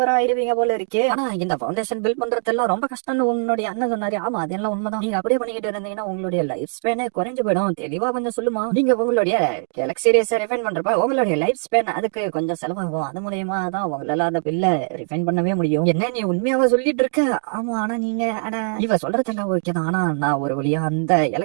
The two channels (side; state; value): left; silent; digital silence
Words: ஆயிருவீங்க போல இருக்கு. ஆனா இந்த ஃபவுண்டேஷன் பில்ட் பண்றதெல்லாம் ரொம்ப கஷ்டம்னு உன்னுடைய அண்ணன் சொன்னாரு. ஆமா அதெல்லாம் உண்மைதான். நீங்க அப்படியே பண்ணிக்கிட்டு இருந்தீங்கன்னா உங்களுடைய லைஃப் ஸ்பேனே குறைஞ்சு போயிடும். தெளிவா கொஞ்சம் சொல்லுமா, நீங்க உங்களுடைய கேலக்ஸி ரேஸை ரிஃபைன் பண்றப்ப உங்களுடைய லைஃப் ஸ்பேன் அதுக்கு கொஞ்சம் செலவாகும். அது மூலியமா தான் உங்களால அந்த பில்ல ரிஃபைன் பண்ணவே முடியும். என்ன நீ உண்மையாவா சொல்லிட்டு இருக்க, ஆமா ஆனா நீங்க இவ சொல்றதெல்லாம் ஓகே தான், ஆனா நான் ஒரு வழியா அந்த